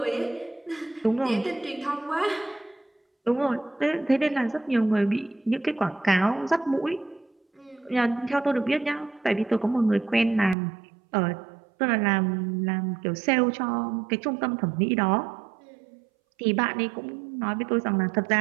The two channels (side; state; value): left; drops out; at 10.6 s